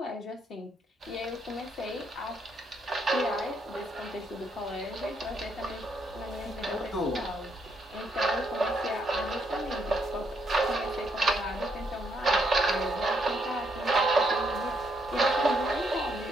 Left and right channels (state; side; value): normal; both; correlation 0.74